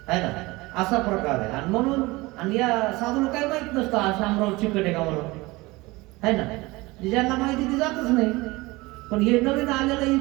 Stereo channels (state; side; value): quieter; left; 21.8 dB